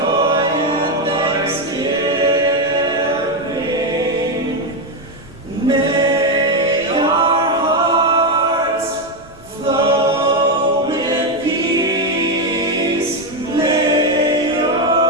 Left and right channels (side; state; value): right; noise; rumble, 25 dB below the sound